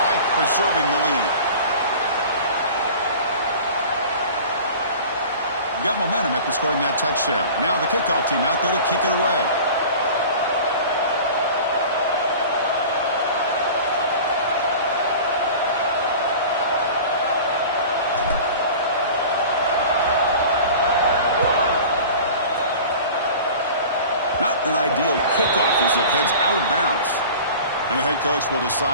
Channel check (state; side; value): inverted; both; correlation -0.40